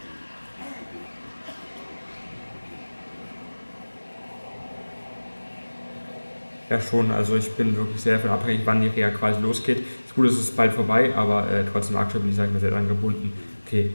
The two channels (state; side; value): inverted; both; correlation -1.00